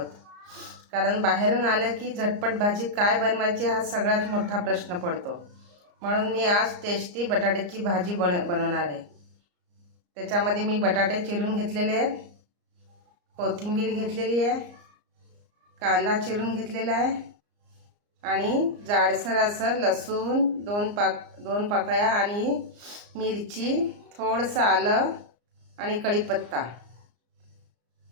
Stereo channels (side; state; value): left; late; 34 ms